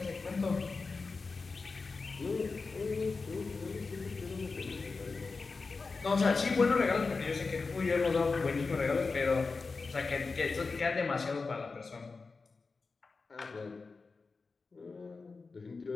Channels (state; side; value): quieter; right; 4.2 dB